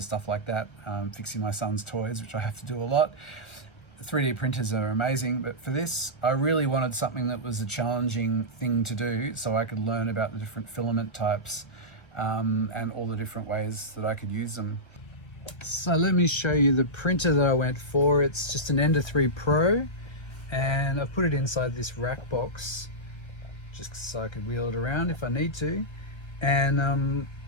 stuff like that, fixing my son's toys, which I have to do a lot. 3D printers are amazing, but for this, I really wanted something that was a challenging thing to do so I could learn about the different filament types and all the different ways that I could use them. So let me show you the printer that I went for. It's just an Ender 3 Pro, and I've put it inside this rack box just so I could wheel it around if I need to. And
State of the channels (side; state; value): right; late; 1.3 ms